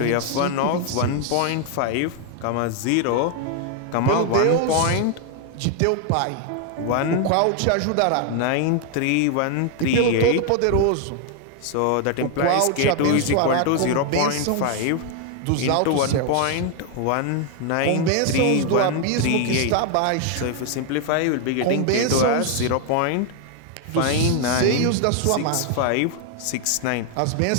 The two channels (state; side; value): different; both; correlation 0.00